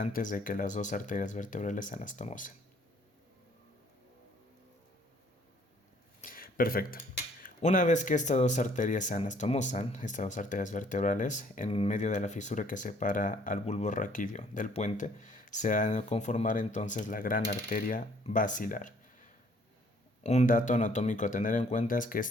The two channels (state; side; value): normal; both; correlation 0.61